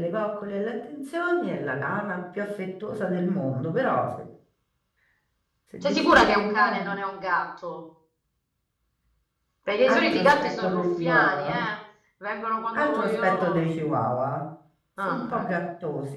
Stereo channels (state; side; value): identical; both; correlation 1.00